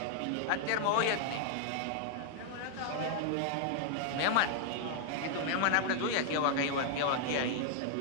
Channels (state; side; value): different; both; correlation 0.00